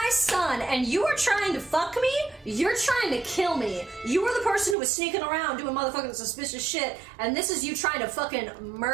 son, and you are trying to fuck me? You're trying to kill me. You were the person who was sneaking around doing motherfucking suspicious shit, and this is you trying to fucking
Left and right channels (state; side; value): drops out; left; at 4.8 s